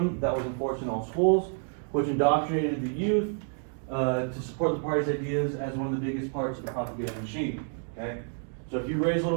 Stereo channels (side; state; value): left; silent; 59 dB below the other